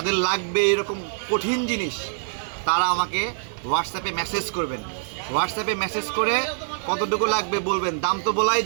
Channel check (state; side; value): silent; left; digital silence